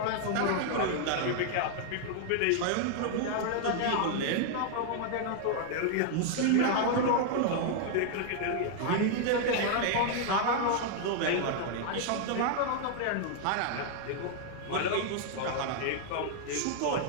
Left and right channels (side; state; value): both; different; correlation 0.00